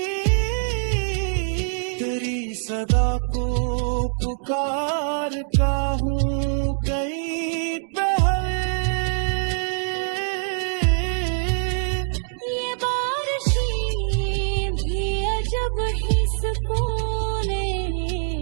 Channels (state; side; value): silent; left; 61 dB below the other